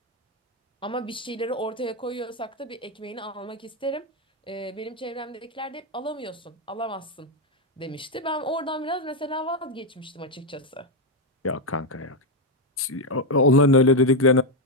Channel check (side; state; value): both; normal; correlation 0.05